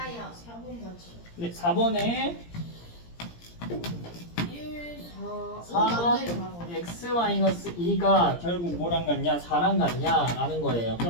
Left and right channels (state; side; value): late; right; 17 ms